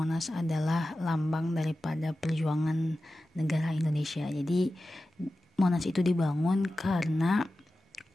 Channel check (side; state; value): both; normal; correlation 0.94